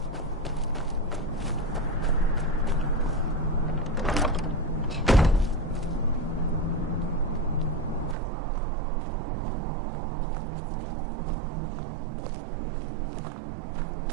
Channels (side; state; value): left; drops out; at 8.2 s